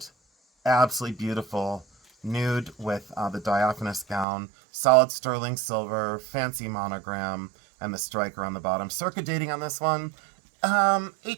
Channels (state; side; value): drops out; left; at 4.2 s